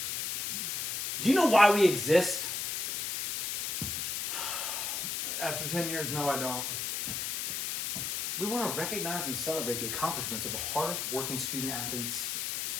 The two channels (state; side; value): noise; left; hiss, 2 dB below the sound